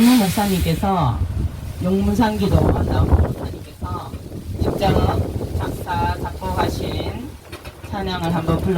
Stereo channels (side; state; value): both; identical; correlation 1.00